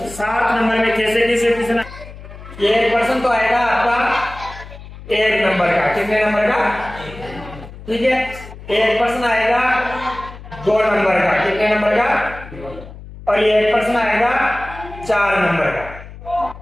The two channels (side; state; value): left; noise; hum, 15 dB below the sound